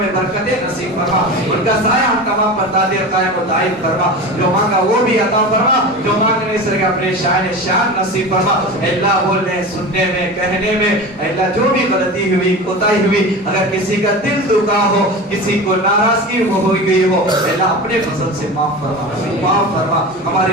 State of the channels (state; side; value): normal; both; correlation 0.29